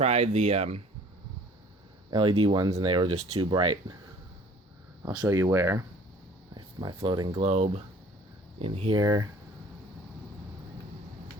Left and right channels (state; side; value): normal; both; correlation 0.51